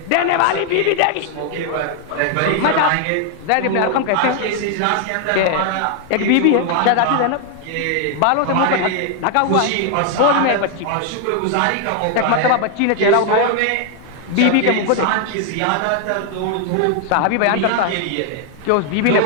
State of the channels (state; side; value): different; both; correlation 0.00